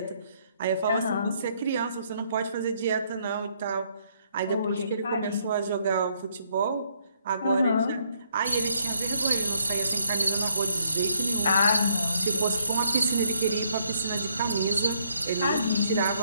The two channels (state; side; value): inverted; both; correlation -0.71